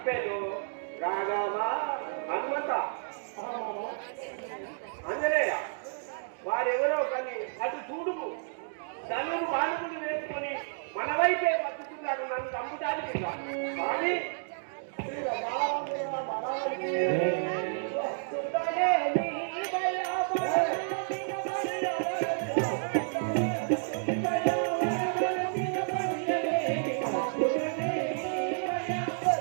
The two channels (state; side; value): silent; left; digital silence